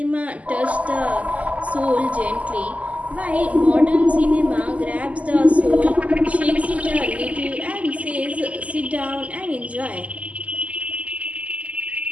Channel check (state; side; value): late; left; 0.071 ms